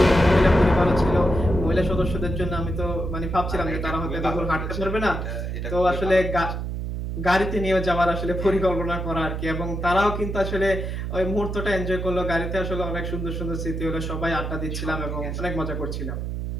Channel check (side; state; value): right; noise; hum, 4 dB below the sound